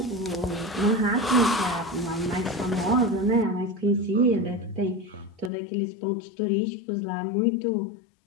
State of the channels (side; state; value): right; drops out; at 5.5 s